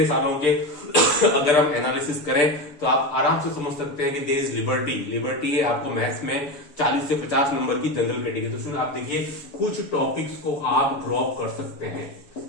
सालों के अगर हम एनालिसिस करें तो आप आराम से समझ सकते हैं कि देयर इज लिबर्टी है आपको मैथ्स में 40 से 50 नंबर की जनरल कैटेगरी। तो स्टूडेंट आप देखिए कुछ टॉपिक्स को आप ड्रॉप कर सकते हैं,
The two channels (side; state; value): right; late; 6.8 ms